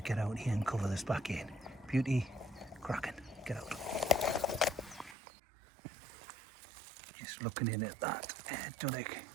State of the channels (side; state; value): left; drops out; at 5.2 s